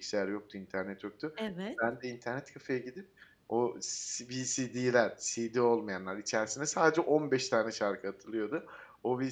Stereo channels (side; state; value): both; identical; correlation 1.00